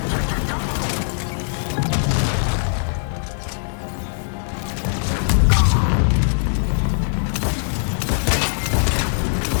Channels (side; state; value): right; silent; digital silence